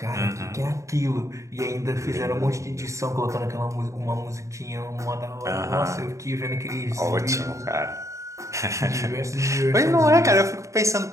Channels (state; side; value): late; left; 0.15 ms